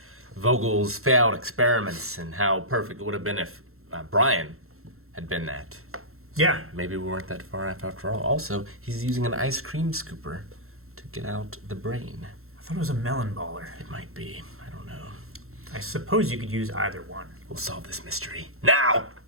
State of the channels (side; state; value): left; late; 0.62 ms